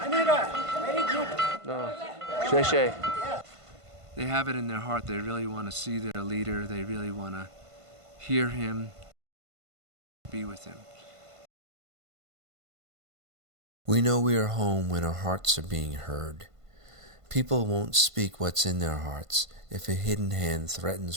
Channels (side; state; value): left; late; 1.5 ms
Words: good. No. Sheshe. They have it in their heart. They really want to see their leader. They really want to hear him, be with him. We know we are home when our hearts are being heard. People won't speak what's in their hearts if a hidden hand